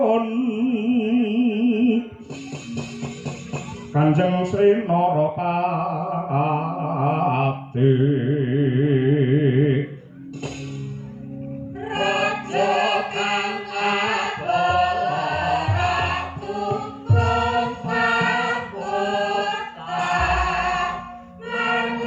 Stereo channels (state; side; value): identical; both; correlation 1.00